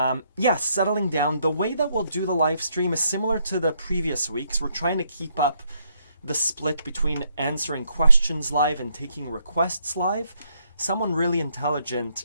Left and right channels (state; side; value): inverted; both; correlation -0.73